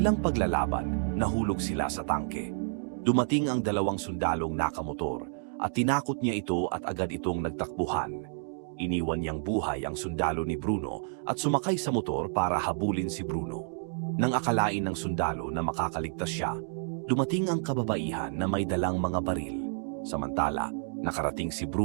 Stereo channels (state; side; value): silent; left; digital silence